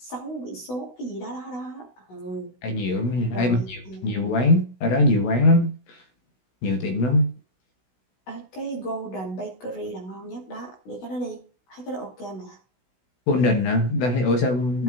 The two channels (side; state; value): right; late; 16 ms